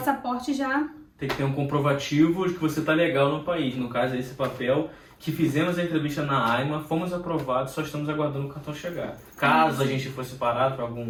já... Tem que ter um comprovativo de que você está legal no país. No caso, esse papel que fizemos a entrevista na AIMA, fomos aprovados, só estamos aguardando o cartão chegar. Caso a gente fosse parado para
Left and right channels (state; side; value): identical; both; correlation 1.00